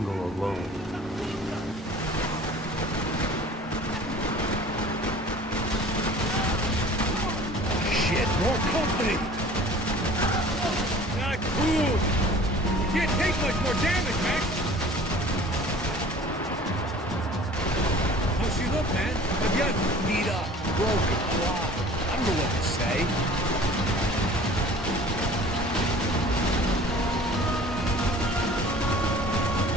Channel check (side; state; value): both; normal; correlation 0.46